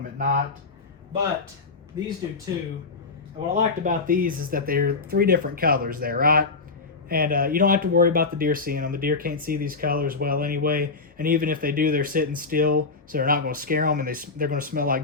at night. But these do too. And what I liked about these is that they're 3 different colors there, right? And you don't have to worry about the deer seeing them. The deer can't see these colors well anyway. And even if they do, they're sitting still, so they're not going to scare them, and they're going to smell like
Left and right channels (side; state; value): right; quieter; 4.2 dB